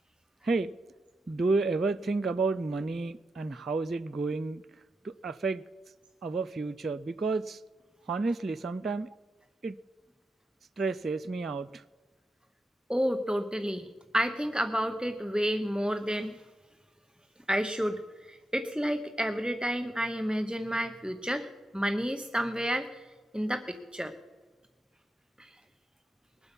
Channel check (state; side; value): normal; both; correlation 0.87